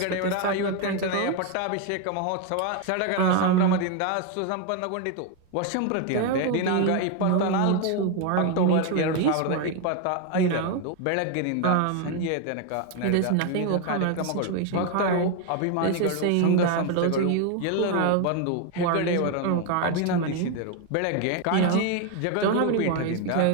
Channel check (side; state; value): both; different; correlation 0.01